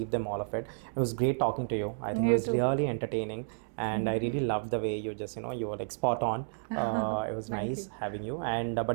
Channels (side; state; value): left; silent; digital silence